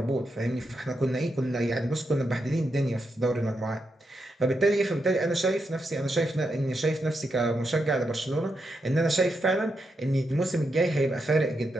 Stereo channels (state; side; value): normal; both; correlation 0.84